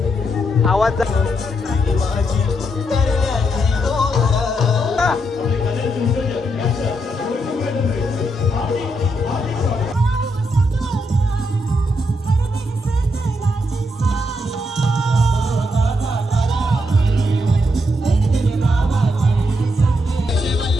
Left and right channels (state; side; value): normal; both; correlation 0.80